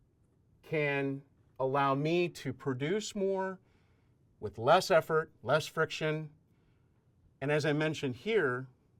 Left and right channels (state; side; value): identical; both; correlation 1.00